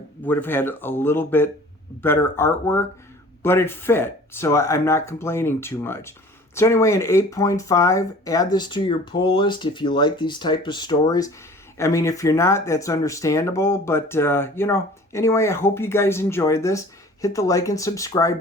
would have had a little bit better artwork, but it fit, so I'm not complaining too much. So anyway, an 8.5, add this to your pull list if you like these type of stories. I mean, if you're not, that's understandable, but, anyway, I hope you guys enjoyed this. Hit the like and subscribe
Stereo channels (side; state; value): both; normal; correlation 0.46